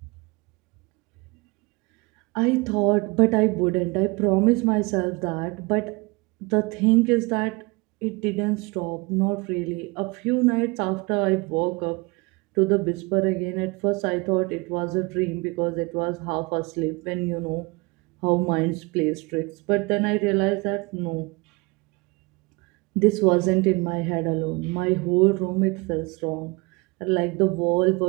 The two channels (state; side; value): quieter; left; 26.4 dB